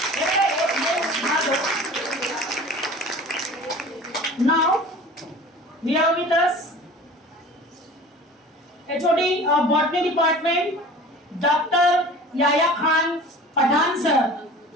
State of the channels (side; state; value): both; normal; correlation 0.41